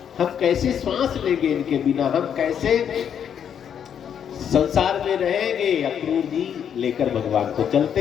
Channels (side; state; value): right; quieter; 8.5 dB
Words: हम कैसे श्वास लेंगे इनके बिना, हम कैसे संसार में रहेंगे? अक्रूर जी लेकर भगवान को